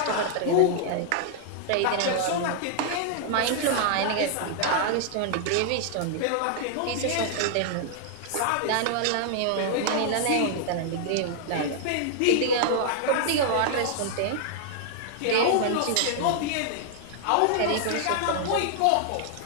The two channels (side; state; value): both; different; correlation -0.01